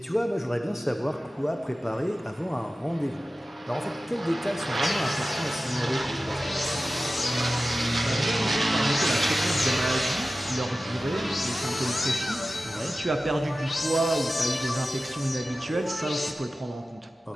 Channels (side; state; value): both; normal; correlation 0.95